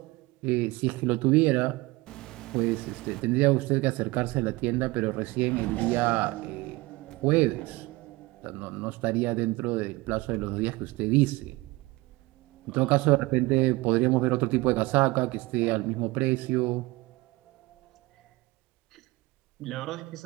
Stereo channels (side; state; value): left; quieter; 22.0 dB